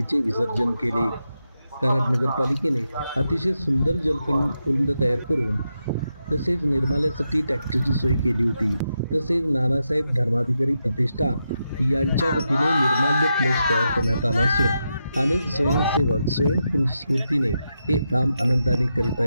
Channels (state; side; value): inverted; both; correlation -0.86